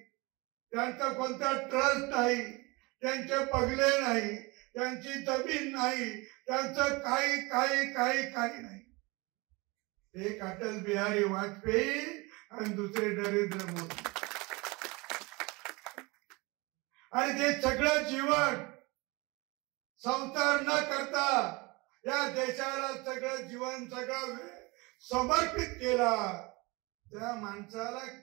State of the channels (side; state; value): left; quieter; 25.4 dB